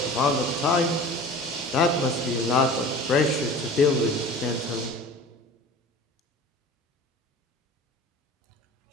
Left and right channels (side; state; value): both; normal; correlation 0.40